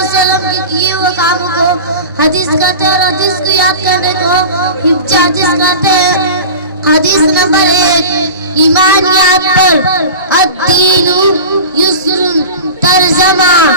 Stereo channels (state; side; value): inverted; both; correlation -0.32